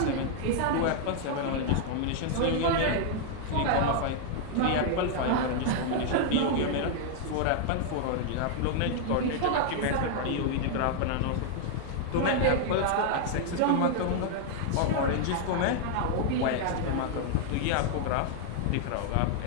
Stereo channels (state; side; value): different; both; correlation 0.00